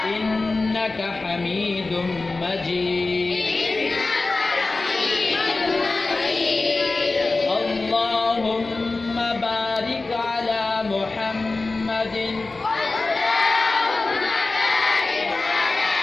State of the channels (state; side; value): quieter; right; 3.5 dB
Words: إنك حميد مجيد. اللهم بارك على محمد